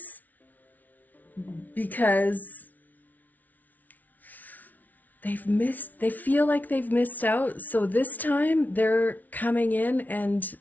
because they feel like they've missed out. So this time they're coming in and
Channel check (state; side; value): late; right; 0.078 ms